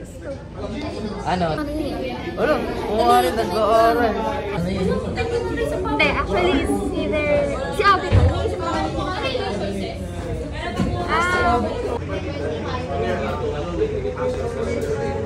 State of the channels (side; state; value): both; identical; correlation 1.00